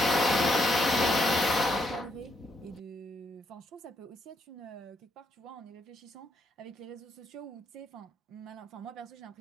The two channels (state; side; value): normal; both; correlation 0.76